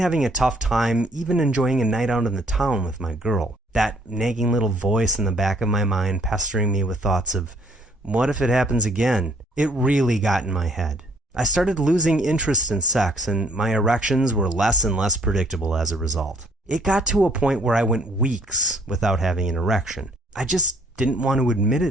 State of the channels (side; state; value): both; normal; correlation 0.62